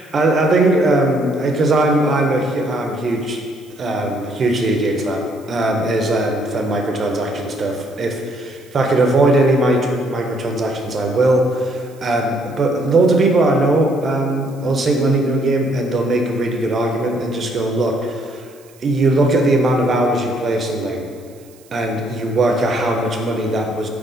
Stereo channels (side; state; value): right; noise; hiss, 28 dB below the sound